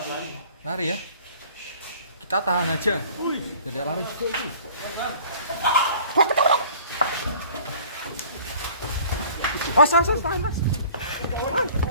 Lari ya. Kita tahan aja. Tidak lari. Tahan mas.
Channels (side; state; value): both; inverted; correlation -0.49